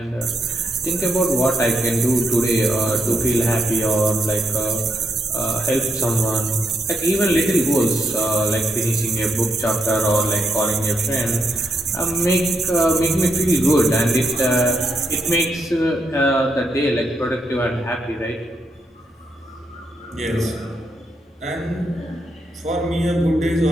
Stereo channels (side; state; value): both; normal; correlation 0.79